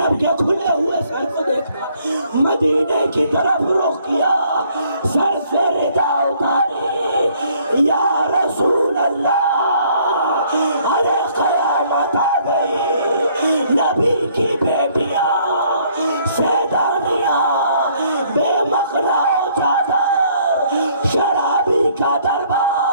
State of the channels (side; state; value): both; inverted; correlation -0.64